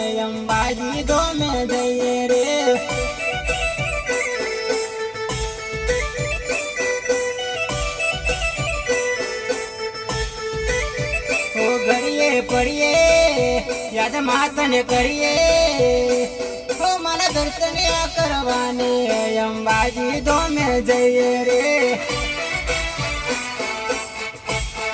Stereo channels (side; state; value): both; identical; correlation 1.00